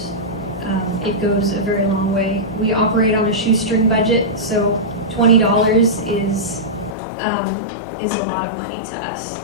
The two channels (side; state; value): right; drops out; at 7.0 s